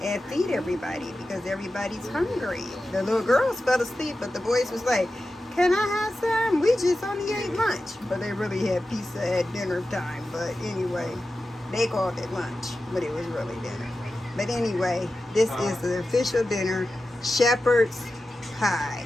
and feed everybody because everybody's hungry. The little girls fell asleep, but the boys was like, "Can I have some? We just only ate lunch." But they really had pizza at dinner time. But anyway, they called it lunch, but it was really dinner. But anyway, this is the official dinner, shepherd's pie.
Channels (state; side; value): normal; both; correlation 0.93